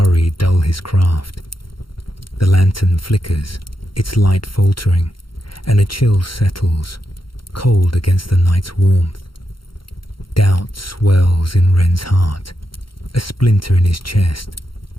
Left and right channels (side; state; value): right; late; 0.73 ms